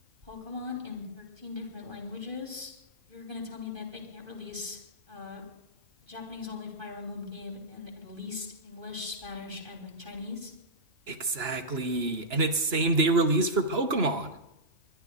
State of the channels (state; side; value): late; left; 2.9 ms